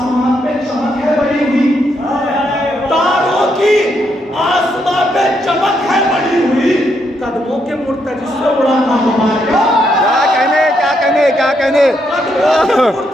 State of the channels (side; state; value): both; normal; correlation 0.77